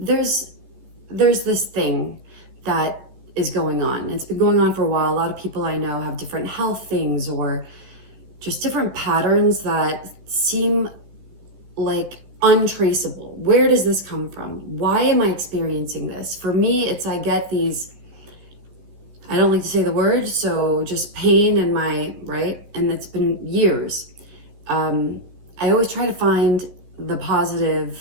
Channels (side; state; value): left; late; 15 ms